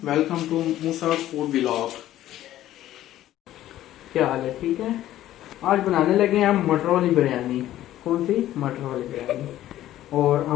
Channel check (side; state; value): right; quieter; 13.5 dB